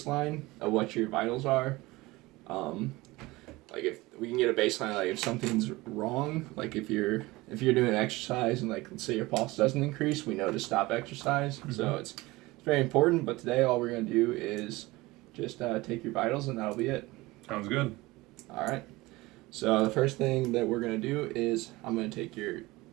of what your vitals are. Like if we can get a baseline, like if something's wrong, like if you're doing exercise and like let's say your pulse doesn't increase, we know to stop exercise. Mm-hmm. So it's very important. But today, all we're gonna do is just take your vitals, and that'll be it. Sounds good. All right. So the first thing that we're gonna do is I'm gonna take your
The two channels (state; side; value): quieter; left; 20.8 dB